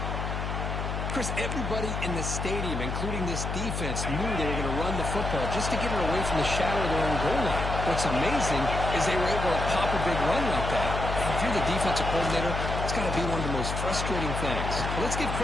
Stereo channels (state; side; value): noise; left; hum, 3 dB below the sound